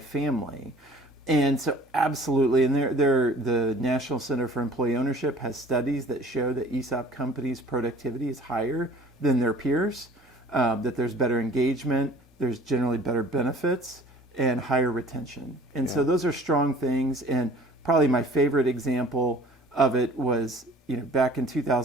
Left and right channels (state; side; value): normal; both; correlation 0.49